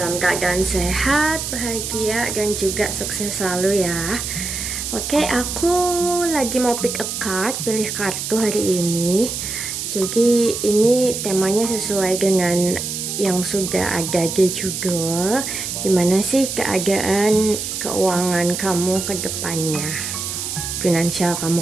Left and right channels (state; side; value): noise; right; hiss, 4 dB below the sound